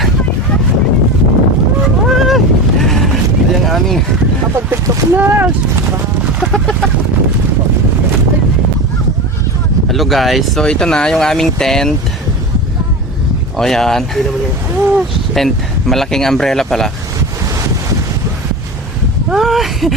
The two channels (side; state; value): both; normal; correlation 0.25